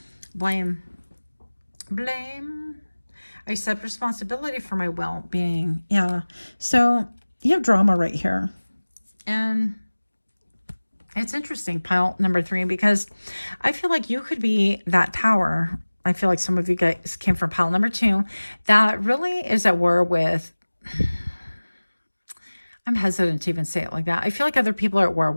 Blame. I accept responsibility for my well-being. Yeah. So you have drama right here. And it's interesting, pile number 3, because I feel like you could be that tower. I feel like some of you guys came from pile number 2 that really is at war with, I'm hesitant to even say it like that. I feel like other people are at war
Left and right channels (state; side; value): inverted; both; correlation -1.00